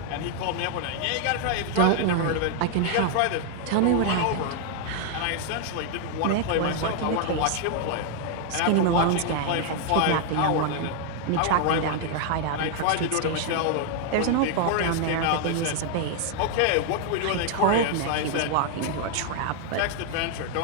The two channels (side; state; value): both; different; correlation 0.00